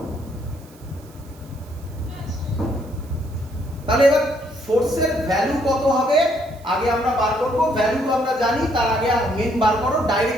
তাহলে এবার ফোর্সের ভ্যালু কত হবে আগে আমরা বার করব। ভ্যালু তো আমরা জানি, তার আগে মেন বার করো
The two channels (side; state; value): right; noise; hiss, 26 dB below the sound